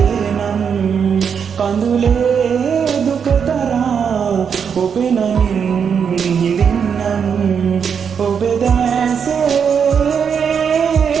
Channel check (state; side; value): quieter; left; 7.0 dB